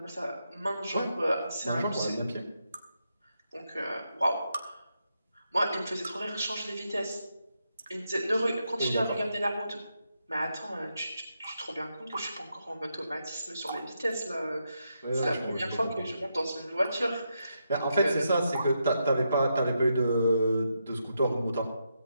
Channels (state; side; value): inverted; both; correlation -0.83